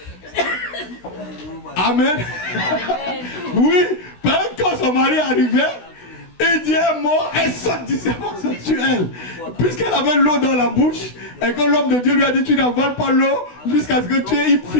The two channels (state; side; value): late; right; 16 ms